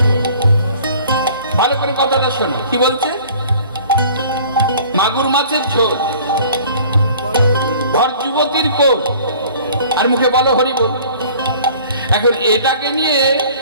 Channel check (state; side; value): inverted; both; correlation -0.50